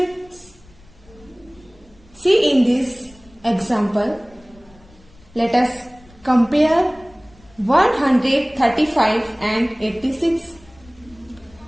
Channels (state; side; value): noise; left; rumble, 27 dB below the sound